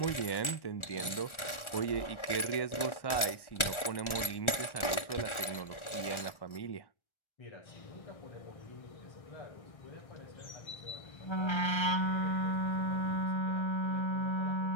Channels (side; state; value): right; late; 1.4 ms